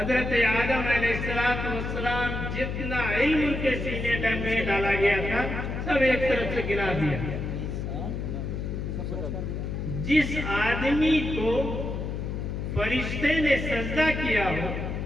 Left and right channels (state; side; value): noise; left; hum, 4 dB below the sound